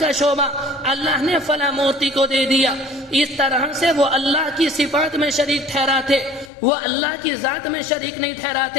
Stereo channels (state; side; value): drops out; right; at 6.5 s